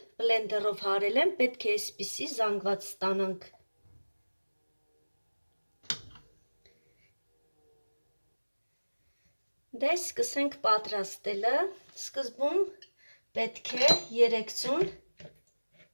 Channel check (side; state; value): both; inverted; correlation -1.00